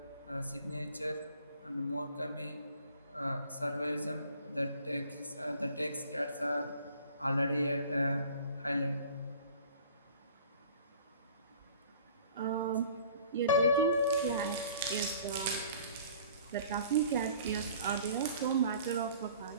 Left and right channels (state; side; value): inverted; both; correlation -0.50